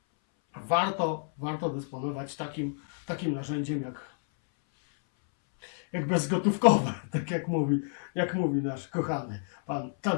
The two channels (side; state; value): right; silent; 58 dB below the other